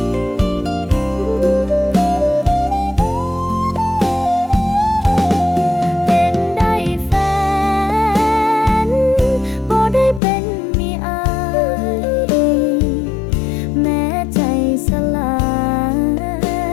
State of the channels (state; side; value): drops out; right; at 10.2 s